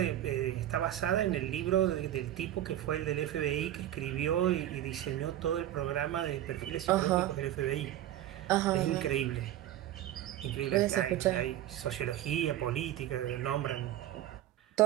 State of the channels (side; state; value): left; quieter; 12.7 dB